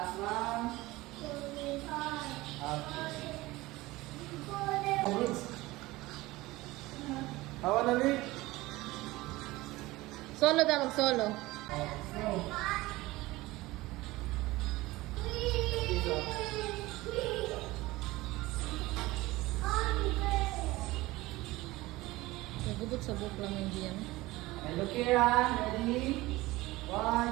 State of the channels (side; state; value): left; quieter; 19.5 dB